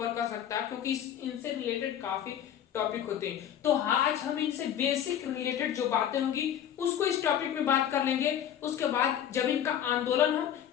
कर सकता क्योंकि इनसे रिलेटेड काफी टॉपिक होते हैं। तो आज हम इनसे बेसिक रिलेटेड जो बातें होंगी उसको इस टॉपिक में बात कर लेंगे। उसके बाद जब इनका आंदोलन हम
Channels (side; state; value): right; quieter; 10.0 dB